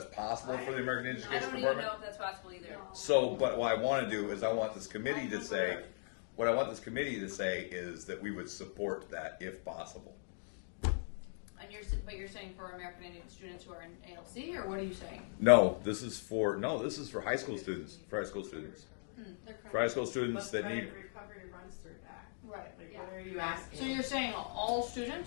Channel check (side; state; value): right; silent; digital silence